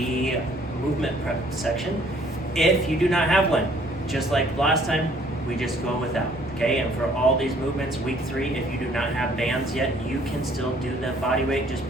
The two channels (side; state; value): both; normal; correlation 0.61